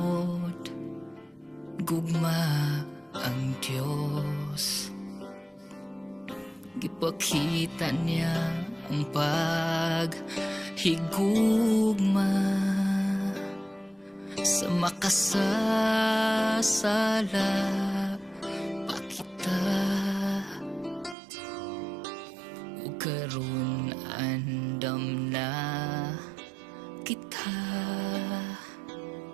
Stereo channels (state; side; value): drops out; left; at 21.2 s